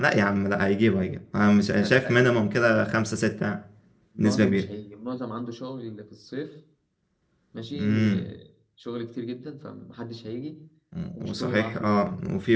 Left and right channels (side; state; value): both; identical; correlation 1.00